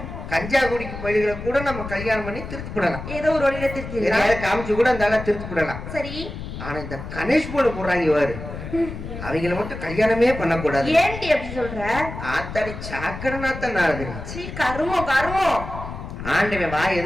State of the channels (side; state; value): left; noise; rumble, 9 dB below the sound